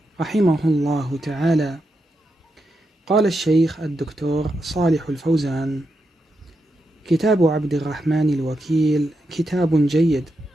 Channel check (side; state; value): both; normal; correlation 0.85